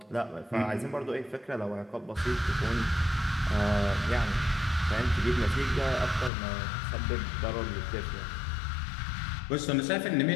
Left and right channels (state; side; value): drops out; right; at 6.3 s